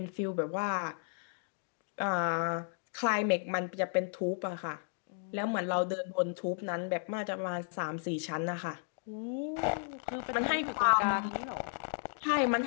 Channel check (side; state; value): right; silent; digital silence